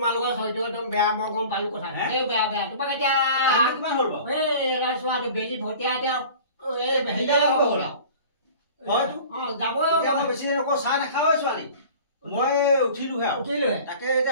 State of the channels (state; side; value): inverted; both; correlation -0.42